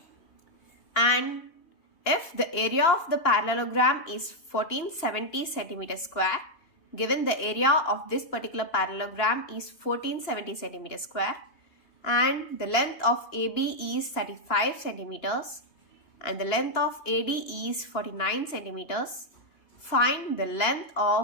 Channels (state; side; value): late; right; 2.9 ms